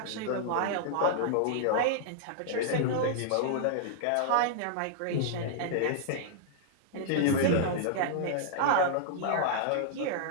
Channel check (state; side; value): different; both; correlation -0.01